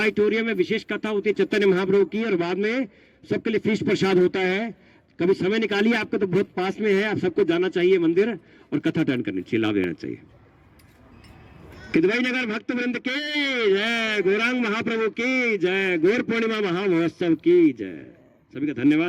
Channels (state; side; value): identical; both; correlation 1.00